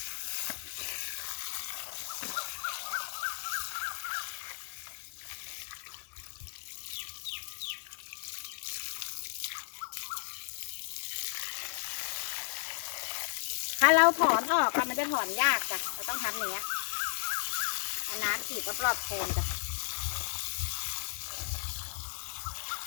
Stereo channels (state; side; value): silent; right; digital silence